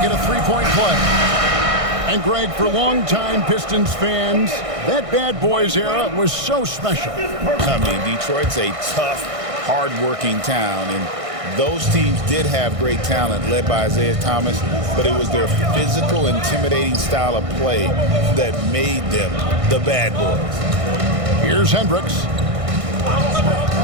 it a three-point play. And Greg, for longtime Pistons fans, that Bad Boys era was so special. I mean, Detroit's a tough, hard-working town, and those teams did have great talent led by Isaiah Thomas, but it was their physical, intimidating style of play that made them the Bad Boys. Here's Hendricks.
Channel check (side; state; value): left; late; 1.6 ms